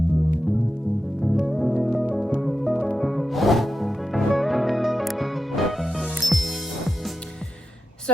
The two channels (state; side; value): normal; both; correlation 0.90